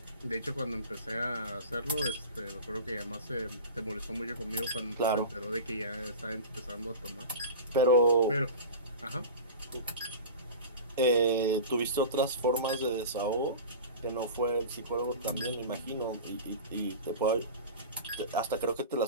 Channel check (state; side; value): inverted; both; correlation -0.33